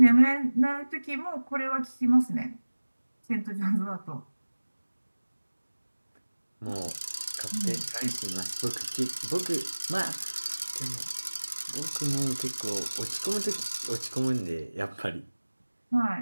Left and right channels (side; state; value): both; inverted; correlation -1.00